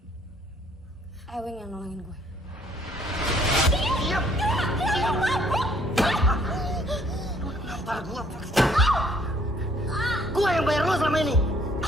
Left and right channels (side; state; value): both; normal; correlation 0.63